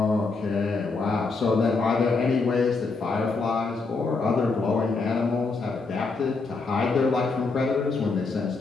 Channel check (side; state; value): right; quieter; 4.1 dB